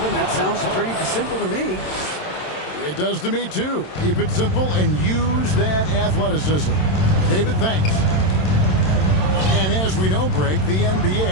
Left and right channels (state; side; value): late; right; 27 ms